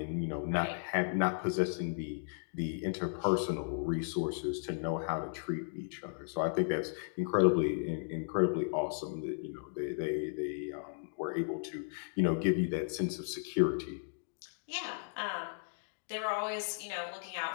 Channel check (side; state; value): right; silent; digital silence